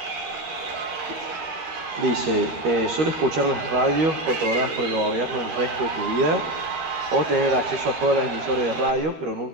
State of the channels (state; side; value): late; left; 13 ms